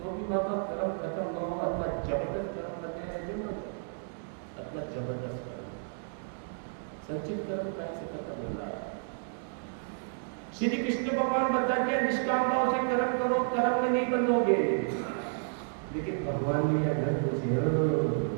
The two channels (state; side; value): silent; left; digital silence